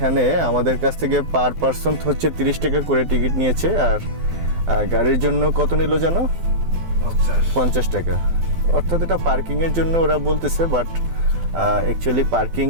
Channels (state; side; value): late; left; 12 ms